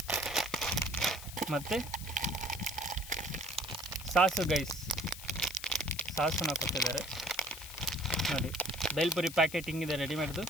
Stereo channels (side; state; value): left; noise; hiss, 12 dB below the sound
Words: ಮತ್ತು ಸಾಸು ಗೈಸ್, ಸಾಸನ್ನ ಕೊಟ್ಟಿದ್ದಾರೆ ನೋಡಿ. ಬೇಲ್ಪುರಿ ಪ್ಯಾಕೆಟ್ ಹಿಂಗಿದೆ ರೆಡಿಮೇಡ್ದು,